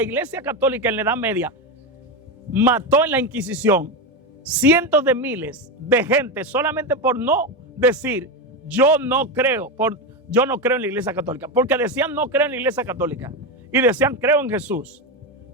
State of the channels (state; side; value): normal; both; correlation 0.13